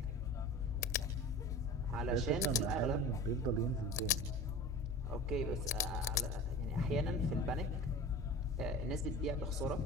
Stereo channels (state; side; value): normal; both; correlation 0.36